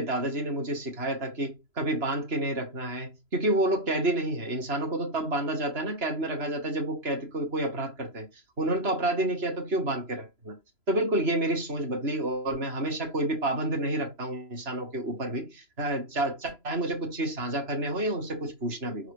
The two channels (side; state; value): left; late; 3.0 ms